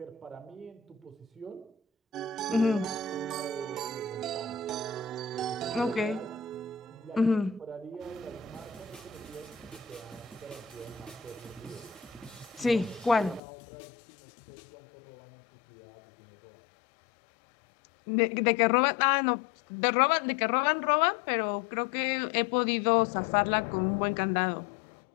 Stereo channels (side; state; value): right; drops out; at 13.4 s